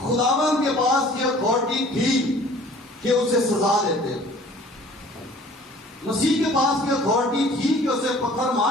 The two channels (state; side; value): normal; both; correlation 0.50